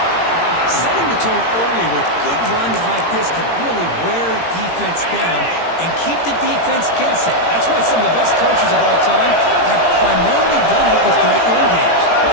Setting the tone early with good runs like this can really wear defense down and keep the defense guessing. That's why some of the best coaches of all time have primarily done it with great run games.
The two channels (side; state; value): right; late; 18 ms